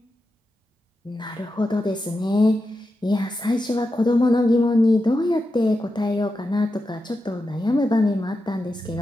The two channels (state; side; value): normal; both; correlation 0.89